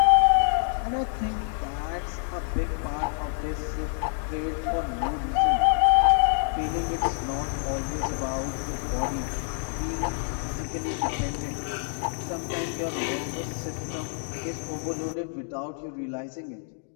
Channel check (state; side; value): silent; right; 60 dB below the other